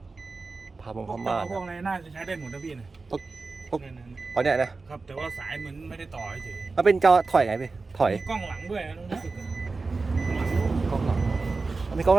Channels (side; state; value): left; quieter; 3.9 dB